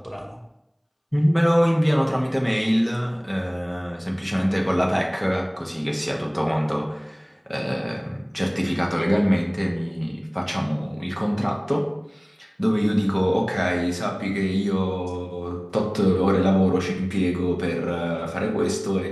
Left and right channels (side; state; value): both; identical; correlation 1.00